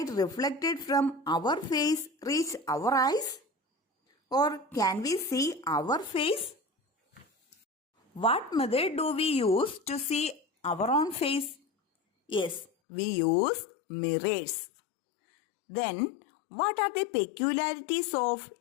reflected from our face reach our eyes? Or can we see our face? What method do we use to see our own face? Yes, we use mirrors. Then, what are the peculiarities of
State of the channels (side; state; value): right; drops out; at 12.7 s